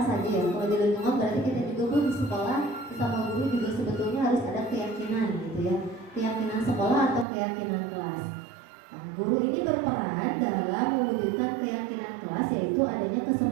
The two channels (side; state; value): left; drops out; at 7.2 s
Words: saja ya. Kalau di lingkungan berarti kita juga pun di sekolah bersama guru juga sebetulnya harus ada keyakinan gitu ya. Keyakinan sekolah atau keyakinan kelas. Nah, guru ini berperan dalam mewujudkan keyakinan kelas yaitu adanya